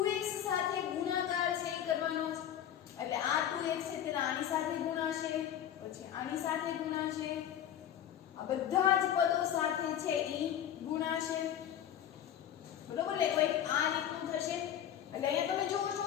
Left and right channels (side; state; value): right; quieter; 10.2 dB